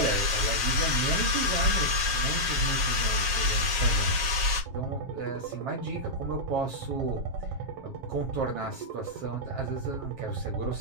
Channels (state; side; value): late; left; 7.4 ms